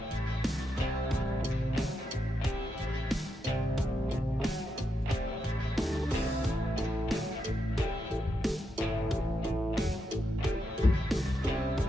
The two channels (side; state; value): both; normal; correlation 0.83